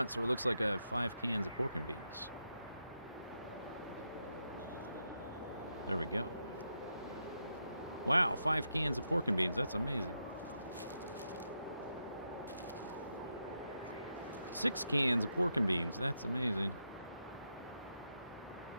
so it looks like I have 5 cans of pork and beans. There we go. Wow, 5 cans of pork and beans. That's amazing. 6 cans of pork and beans. That's amazing.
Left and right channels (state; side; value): inverted; both; correlation -0.84